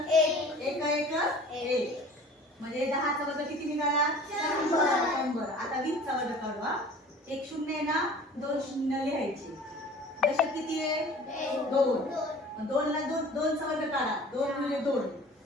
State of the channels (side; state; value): both; normal; correlation 0.45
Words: एक. एक म्हणजे 10 चा वर्ग किती निघाला? 100. आता 20 चा वर्ग काढू. एक शून्य आहे ना, दोन शून्य लिहायचे. दशक किती आहे? 2. 2 ला 2 चा वर्ग काढा. 2 गुणिले 2